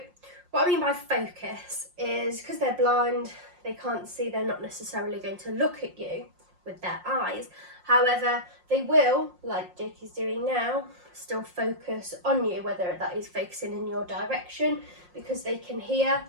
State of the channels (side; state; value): left; late; 5.6 ms